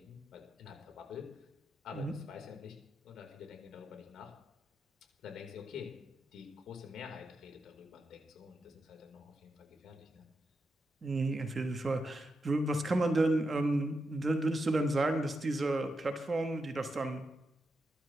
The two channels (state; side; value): normal; both; correlation 0.86